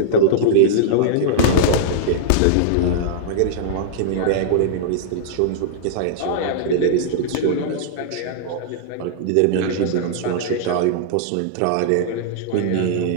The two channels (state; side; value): different; both; correlation -0.02